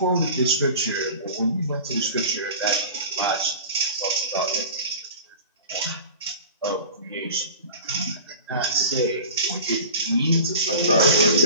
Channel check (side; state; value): both; inverted; correlation -0.39